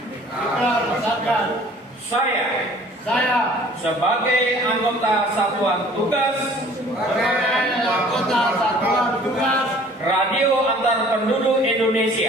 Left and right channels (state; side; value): normal; both; correlation 0.52